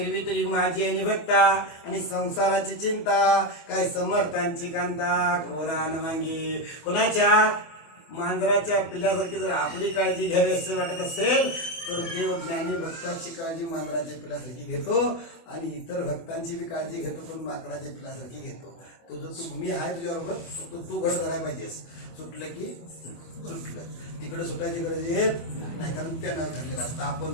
तरी माझी आणि भक्ता आणि संसाराची चिंता, काय समर्थांची कांता कोरान मांगी. कोणाच्या? मांजराच्या पिल्ल्यासारखी जर आपली काळजी घ्यावी असं वाटत असेल तर देव ज्ञानी भक्तांची काळजी मांजराच्या पिल्ल्यासारखी घेतो आणि इतर भक्तांची बी काळजी घेतो, पण माकडाच्या पिल्ल्यासारखी घेतो. तुझं तू मी आहे तुझ्याबरोबर, फक्त तू घट करायला पाहिजेस. सुटलं की सुटलं, तिकडे सुटायची गरज येत नाही, कारण त्यानं धरलेलं असतं.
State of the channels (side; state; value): right; late; 24 ms